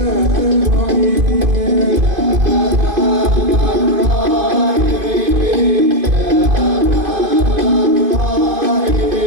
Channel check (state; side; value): late; left; 2.5 ms